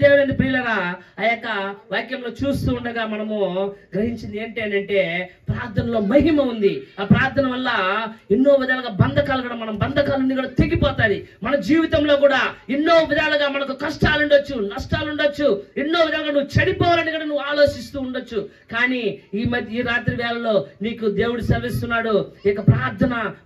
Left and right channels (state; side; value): identical; both; correlation 1.00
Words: దేవుని ప్రియులరా, ఆ యొక్క వాక్యంలో చూస్తూ ఉండగా మనము గ్రహించింది ఏంటి అని అంటే ప్రార్థనలో మహిమ ఉంది. ఆ ప్రార్థన వల్ల ఎన్నో విధాలుగా బంధకాలు కూడా మన బంధకాలన్నీ కూడా తెగిపోతాయి. మన జీవితంలో కూడా ఎన్నో విధాలుగా మనకు కష్టాలు ఉండొచ్చు, నష్టాలు ఉండొచ్చు, ఎన్నో విధాలుగా నువ్వు చెడిపోవాలని కూడా నువ్వు ఆలోచిస్తూ ఉండొచ్చు. కానీ ఈ రాత్రి వేళలో నీకు దేవుడు సెలవిస్తున్నాడు, ఇక ప్రార్థన